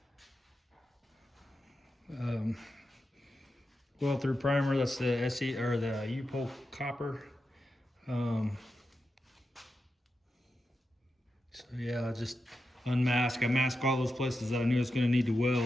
well through primer. That's the SE or the U-pole copper. So yeah, I just unmask. I masked all those places that I knew I was going to need to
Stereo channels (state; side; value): normal; both; correlation 0.89